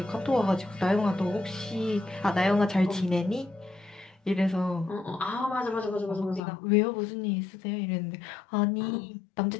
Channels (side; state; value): right; drops out; at 6.4 s